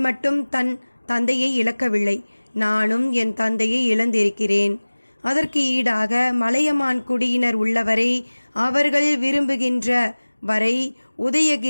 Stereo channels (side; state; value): both; inverted; correlation -1.00